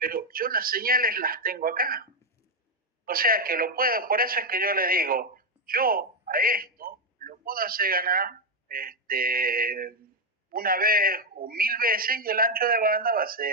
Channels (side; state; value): both; normal; correlation 0.03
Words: yo las señales las tengo acá. O sea que lo puedo, por eso es que yo le digo, yo a esto lo puedo hacer ganar una vez o 1000 veces y el ancho de banda va a